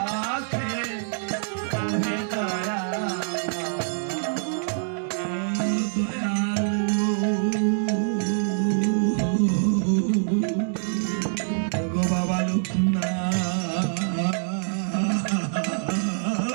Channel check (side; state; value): left; silent; digital silence